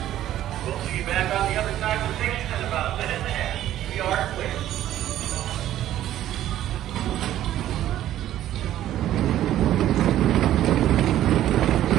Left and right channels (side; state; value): left; quieter; 12.7 dB